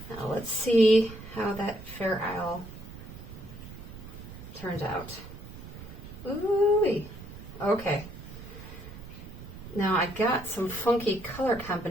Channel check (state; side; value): noise; right; rumble, 14 dB below the sound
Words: Now let's see how that fair isle turns out. Ooh-wee. Okay. Now I got some funky color